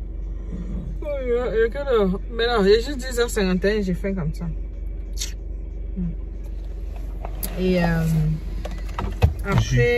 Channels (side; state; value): both; identical; correlation 1.00